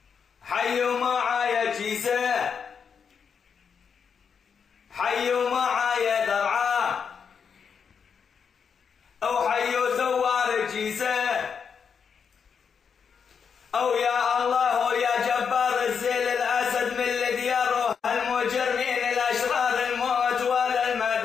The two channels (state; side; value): quieter; right; 6.6 dB